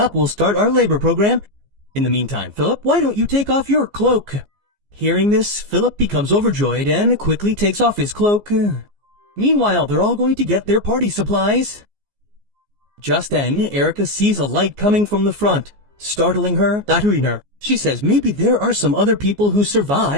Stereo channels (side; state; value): left; late; 14 ms